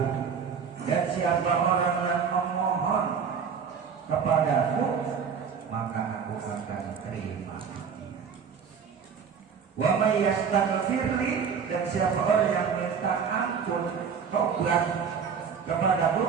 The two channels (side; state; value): left; quieter; 6.6 dB